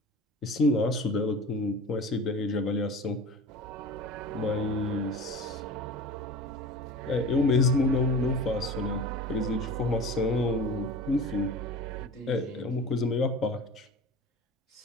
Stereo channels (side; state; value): both; normal; correlation 0.36